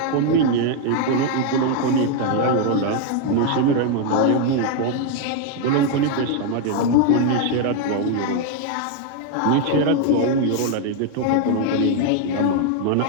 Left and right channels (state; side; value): different; both; correlation 0.01